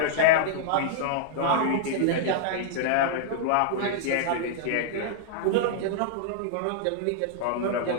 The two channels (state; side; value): different; both; correlation -0.01